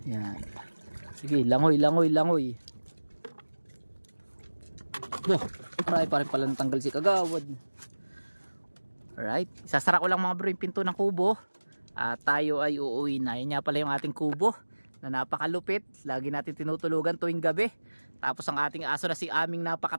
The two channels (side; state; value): both; inverted; correlation -1.00